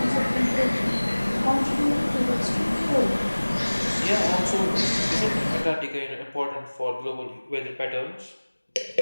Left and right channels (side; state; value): both; inverted; correlation -1.00